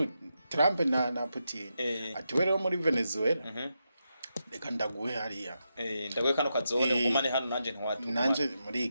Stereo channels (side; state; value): both; inverted; correlation -0.86